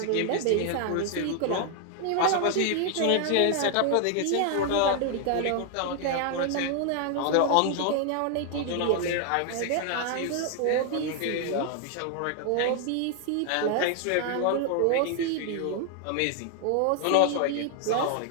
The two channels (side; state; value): both; different; correlation 0.00